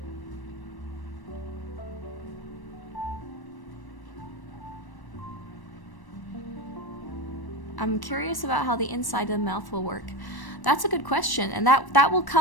I'm curious about how the inside of the mouth will work. That's a good question, and that will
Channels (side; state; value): right; late; 1.1 ms